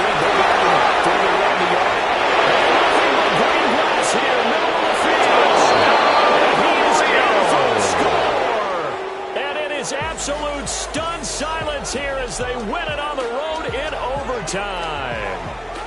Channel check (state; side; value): identical; both; correlation 1.00